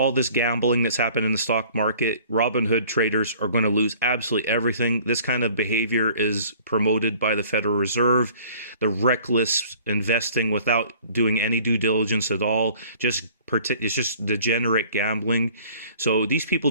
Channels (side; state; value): both; inverted; correlation -0.52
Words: this gambling that's happened in the stock market, Robinhood traders are going to lose absolutely everything. This kind of behavior is promoted by the Federal Reserve, the reckless investing without doing any due diligence at all. It's just degenerate gambling. So these people